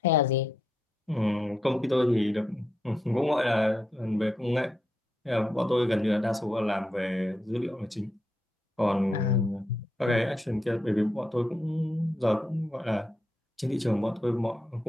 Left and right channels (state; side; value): normal; both; correlation 0.83